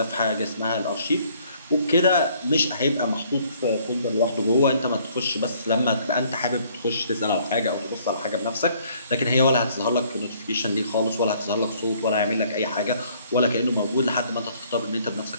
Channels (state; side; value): inverted; both; correlation -0.62